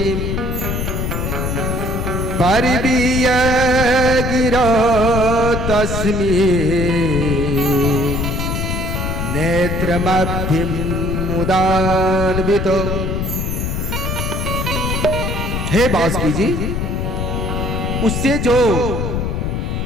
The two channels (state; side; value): noise; left; rumble, 1 dB below the sound